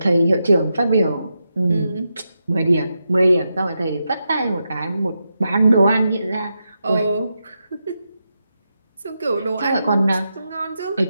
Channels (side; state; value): both; inverted; correlation -0.86